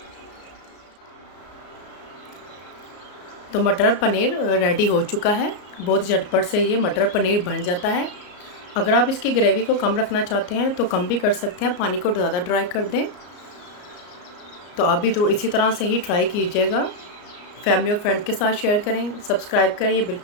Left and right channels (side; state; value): right; late; 33 ms